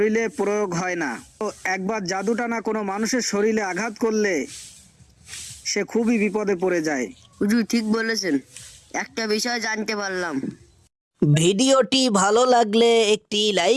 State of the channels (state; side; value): identical; both; correlation 1.00